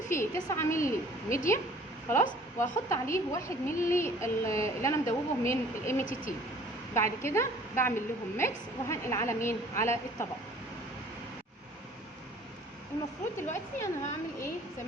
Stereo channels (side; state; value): both; normal; correlation 0.53